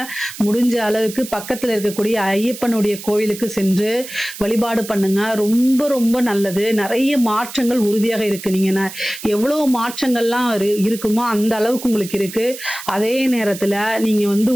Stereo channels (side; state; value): right; noise; hiss, 12 dB below the sound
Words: முடிஞ்ச அளவுக்கு பக்கத்துல இருக்கக்கூடிய ஐயப்பனுடைய கோயிலுக்கு சென்று வழிபாடு பண்ணுங்க. ரொம்ப ரொம்ப நல்லது. நிறைய மாற்றங்கள் உறுதியாக இருக்கு. நீங்க எவ்வளவு மாற்றங்கள்லாம் இருக்குமோ அந்த அளவுக்கு உங்களுக்கு இருக்கு. அதே நேரத்துல நீங்க வந்து